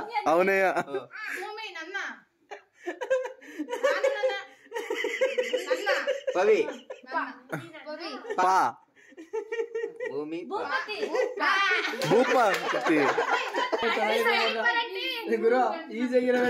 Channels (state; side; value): identical; both; correlation 1.00